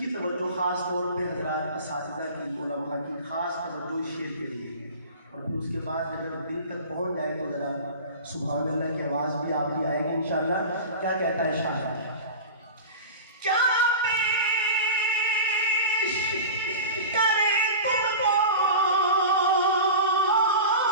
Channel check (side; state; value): both; inverted; correlation -0.33